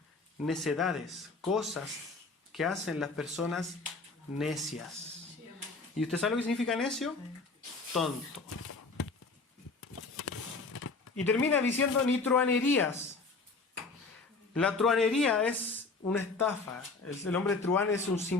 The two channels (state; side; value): quieter; right; 3.9 dB